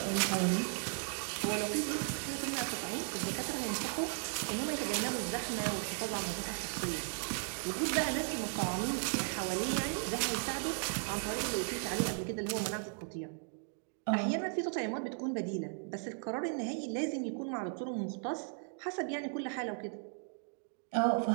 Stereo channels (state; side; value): silent; left; 54 dB below the other